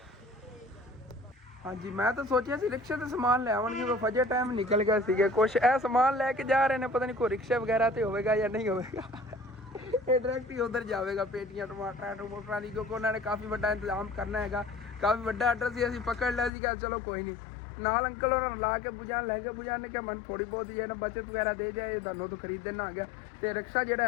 ਹਾਂਜੀ ਮੈਂ ਤਾਂ ਸੋਚਿਆ ਸੀ ਰਿਕਸ਼ੇ ਤੇ ਸਮਾਨ ਲੈ ਆਉਣਗੇ, ਉਹ ਫਜੇ ਟਾਈਮ ਨਿਕਲ ਗਏ ਸੀਗੇ। ਕੁਛ ਇਹ ਸਮਾਨ ਲੈ ਕੇ ਜਾ ਰਹੇ ਨੇ, ਪਤਾ ਨਹੀਂ ਕੋਈ ਰਿਕਸ਼ੇ ਵਗੈਰਾ ਤੇ ਹੋਵੇਗਾ ਜਾਂ ਨਹੀਂ ਹੋਵੇਗਾ। ਇਹ ਡਾਇਰੈਕਟ ਹੀ ਉਧਰ ਜਾਵੇਗਾ, ਪੇਟੀਆਂ ਟਮਾਟਰਾਂ ਦੀ, ਕਿਉਂਕਿ ਉਹਨਾਂ ਨੇ ਕਾਫੀ ਵੱਡਾ ਇੰਤਜ਼ਾਮ ਕਰਨਾ ਹੈਗਾ। ਕਾਫੀ ਵੱਡਾ ਆਰਡਰ ਸੀ, ਅਸੀਂ ਪਕੜ ਲਿਆ ਸੀਗਾ। ਚਲੋ ਕੋਈ ਨਹੀਂ, ਨਾਲ ਅੰਕਲ ਉਹਨਾਂ ਨੂੰ ਲਾ ਕੇ ਬੁਝਾਣ ਲੈ ਕੇ, ਬੁਝਾਣ ਨੇ ਕਿਹਾ ਮੈਨੂੰ ਥੋੜੀ ਬਹੁਤ ਜਿਹੜਾ ਬਚਤ ਵਗੈਰਾ ਦੇ ਜਾਏ, ਤੁਹਾਨੂੰ ਤੋਂ ਖਰੀਦ ਦੇਣਾ ਆ ਗਿਆ। ਤੇ ਰਿਕਸ਼ਾ ਜਿਹੜਾ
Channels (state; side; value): drops out; right; at 16.5 s